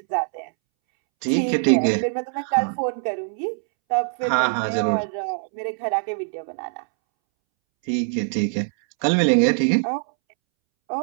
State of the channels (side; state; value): left; silent; 64 dB below the other